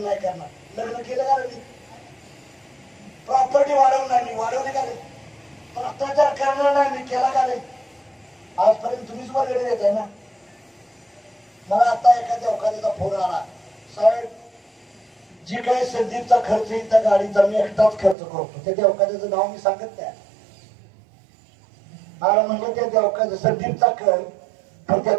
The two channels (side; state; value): left; drops out; at 18.2 s